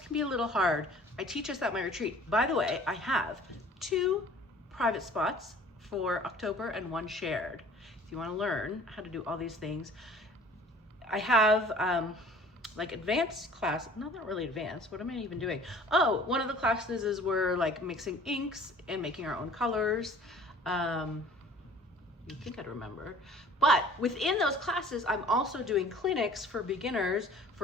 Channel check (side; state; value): both; normal; correlation 0.50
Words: be a little hard. I teach us at my retreat. By the way, I have 2 private spots for October and 1 shared. If you want to learn how to do all these things, I have like advanced class, no, not really advanced. What am I even doing? Oh, one of the classes is we're like mixing inks and making our own colors. You think I'd remember. But within those classes, I'm also doing clinics for beginners.